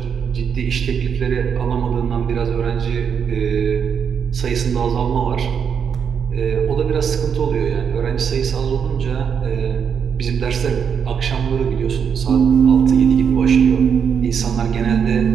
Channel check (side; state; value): left; quieter; 7.1 dB